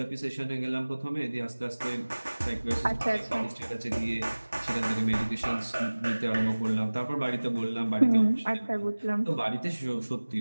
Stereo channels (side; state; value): both; inverted; correlation -1.00